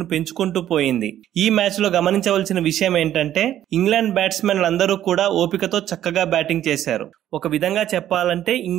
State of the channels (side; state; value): left; quieter; 11.8 dB